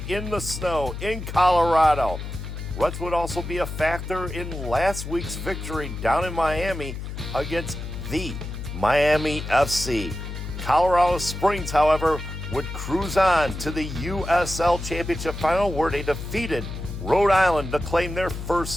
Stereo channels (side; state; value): left; noise; hum, 8 dB below the sound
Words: in the snow in Colorado. Ruts would also be a factor in last week's victory down in Miami against the Miami FC. Colorado Springs, however, would cruise on to the USL Championship final where they defeated Rhode Island to claim their